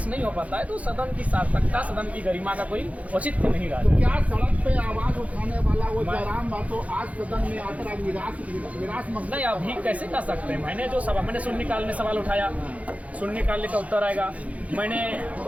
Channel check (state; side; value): late; left; 0.067 ms